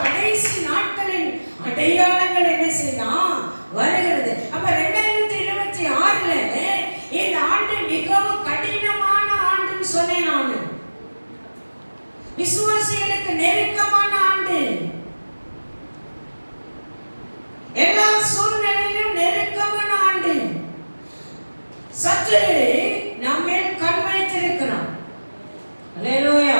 கடைசி நாட்களின் அடையாளங்கள் என்ன செய்யலாம்? வருகிறது. அப்ப 2026ல இந்த ஆண்டு மிகவும் கடினமான ஆண்டுன்னு சொன்னேன் நான். விசுவாசிகளுக்கு நெருக்கமான ஆண்டு. எல்லா சூழ்நிலையிலும் கர்த்தர் நம்மேல் கண் வைத்திருக்கிறார். அல்லேலூயா,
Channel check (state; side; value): inverted; both; correlation -1.00